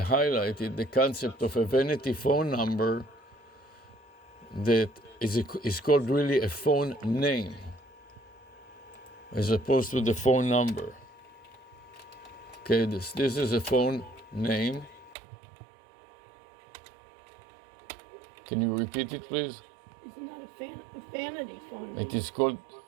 the concept of a vanity phone number that is called really a phone name, as opposed to the phone number. Okay, this is a phone name. Can you repeat it, please? Isn't that a vanity phone name? It is called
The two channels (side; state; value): left; drops out; at 15.2 s